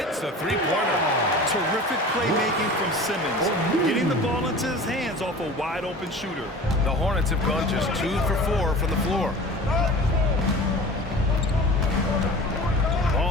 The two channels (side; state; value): both; normal; correlation 0.39